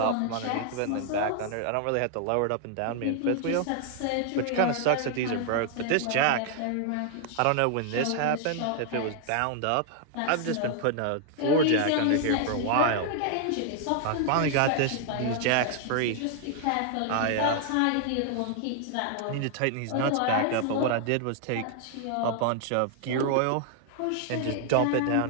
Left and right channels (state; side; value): different; both; correlation 0.00